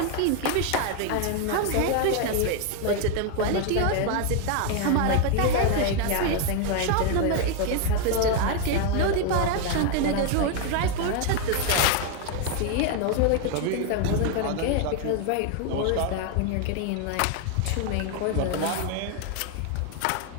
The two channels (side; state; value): both; different; correlation 0.01